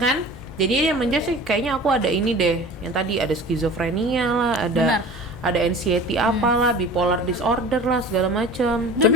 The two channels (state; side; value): normal; both; correlation 0.40